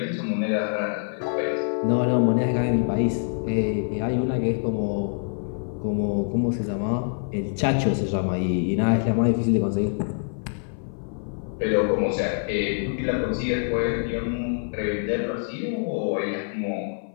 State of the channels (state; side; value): silent; right; 56 dB below the other